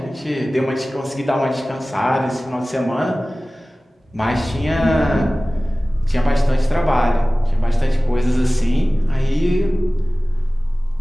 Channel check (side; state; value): both; normal; correlation 0.97